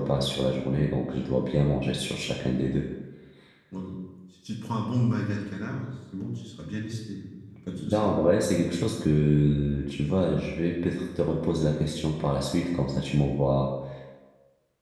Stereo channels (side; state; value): both; identical; correlation 1.00